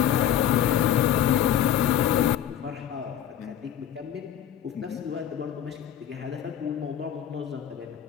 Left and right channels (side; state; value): right; quieter; 10.2 dB